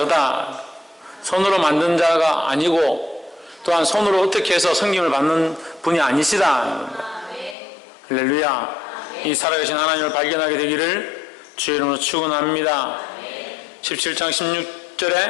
손으로 만든 자가 아니고 또한 손으로 어떻게 해서 성김을 받는 분이 아니시다. 할렐루야. 이 살아계신 하나님을 발견하게 되기를 주의 이름으로 축원합니다. 17장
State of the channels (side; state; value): right; drops out; at 7.6 s